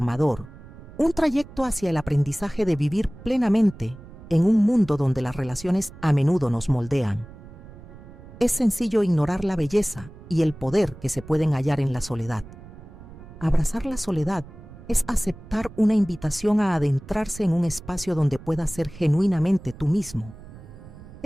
un trayecto hacia el aprendizaje de vivir plenamente en un mundo donde las relaciones a menudo nos moldean. Es sencillo ignorar la belleza y el poder que se pueden hallar en la soledad. Abrazar la soledad es aceptar una invitación a adentrarse en un espacio donde puedas ser genuinamente tú mismo.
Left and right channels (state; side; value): noise; right; rumble, 18 dB below the sound